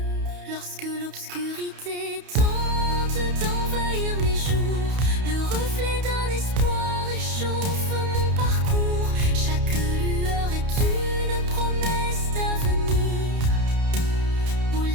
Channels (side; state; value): left; late; 31 ms